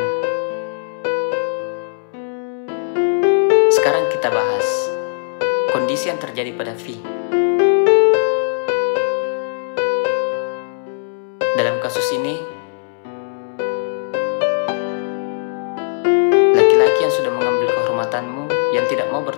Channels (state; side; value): silent; right; 65 dB below the other